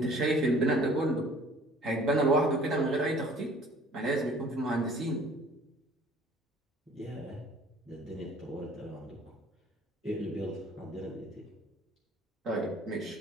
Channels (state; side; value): normal; both; correlation 0.52